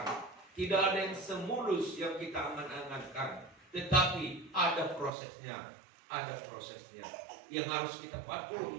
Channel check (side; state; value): left; drops out; at 5.1 s